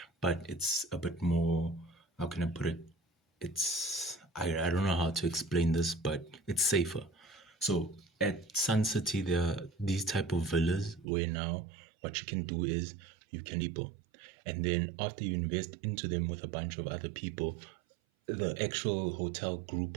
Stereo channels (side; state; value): left; drops out; at 11.1 s